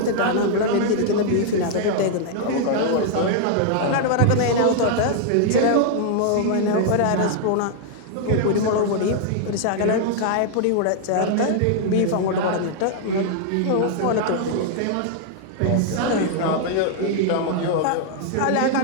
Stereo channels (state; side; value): different; both; correlation 0.00